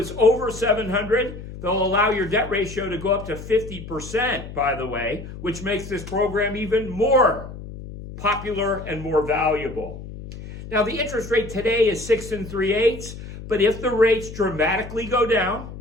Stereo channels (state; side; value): noise; left; hum, 12 dB below the sound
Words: over 700, they'll allow your debt ratio to go up to 50%, by the way, which makes this program even more popular and more valuable. Now, the interest rate today is 6 3/8, but if the rates dramatically go down